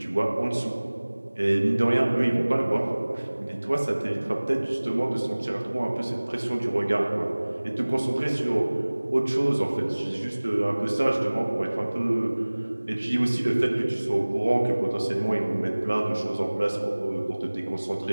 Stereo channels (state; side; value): inverted; both; correlation -1.00